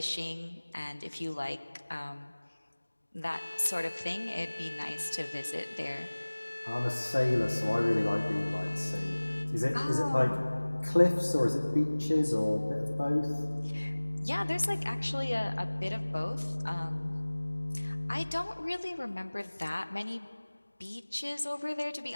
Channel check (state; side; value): inverted; both; correlation -1.00